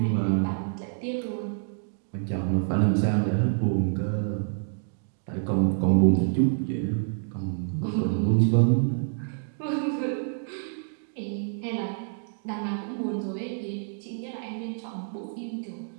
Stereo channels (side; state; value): left; silent; digital silence